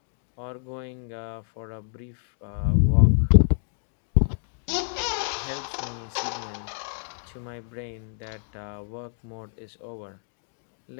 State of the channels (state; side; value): silent; right; digital silence